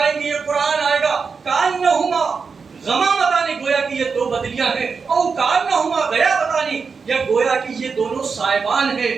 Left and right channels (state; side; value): quieter; left; 5.2 dB